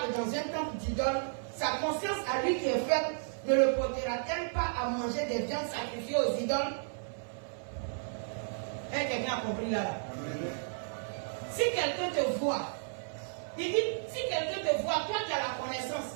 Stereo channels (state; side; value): silent; left; 56 dB below the other